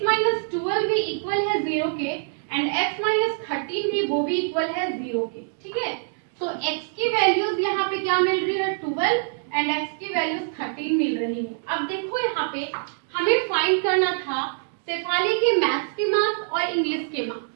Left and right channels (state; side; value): silent; left; digital silence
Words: भी इक्वल है 0 के एंड x-13 भी वो भी इक्वल है 0 के, ठीक है। तो x की वैल्यूज यहाँ पे क्या मिल रही है 12 एंड x की वैल्यूज 13 मिल रही है। अब देखो यहाँ पे हमें फाइंड करना था शेफाली के मैथ्स के मार्क्स और इंग्लिश के